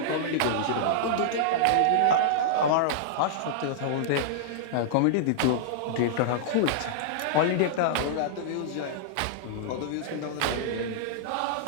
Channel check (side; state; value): both; different; correlation -0.02